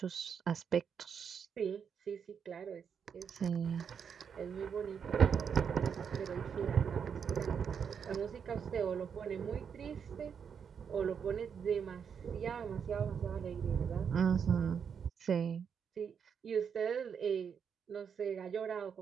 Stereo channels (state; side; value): quieter; left; 7.1 dB